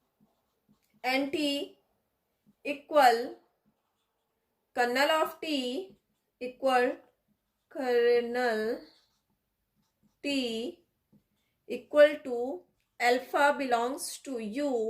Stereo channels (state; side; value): identical; both; correlation 1.00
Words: NT equal kernel of T equal kernel T equal to alpha belongs to